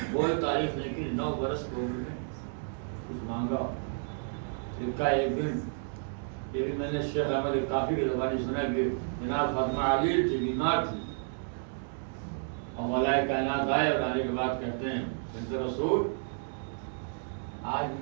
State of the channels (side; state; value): left; silent; digital silence